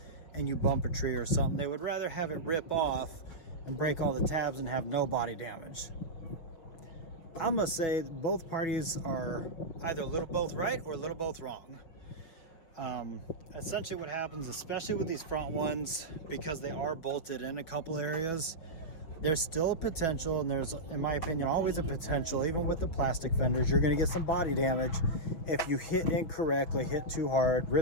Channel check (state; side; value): late; right; 5.9 ms